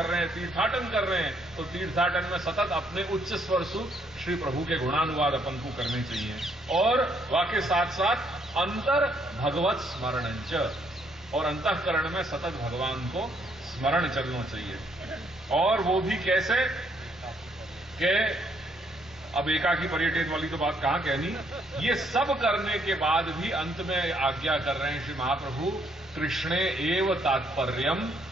रहे हैं, तीर्थाटन कर रहे हैं, तो तीर्थाटन में सतत अपने उच्च स्वर सु श्री प्रभु के गुणानुवाद अपन को करने चाहिए। और वाके साथ साथ अंतर भगवत स्मरणंच, और अंतःकरण में सतत भगवान को स्मरण चलना चाहिए। और वो भी कैसे कि अब एकाकी पर्यटित वाली तो बात कहां कहनी, ये सब करने के बाद भी अंत में आज्ञा कर रहे हैं श्री महाप्रभु, कृष्णे एव तात्पर्यम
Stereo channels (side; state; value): both; normal; correlation 0.70